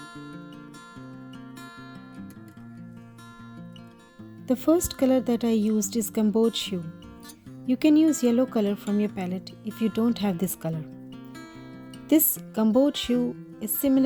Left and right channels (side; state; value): both; identical; correlation 1.00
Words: The first color that I used is gouache. You can use yellow color from your palette if you don't have this color. This gouache is